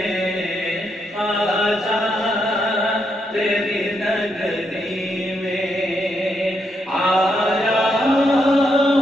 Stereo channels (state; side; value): normal; both; correlation 0.79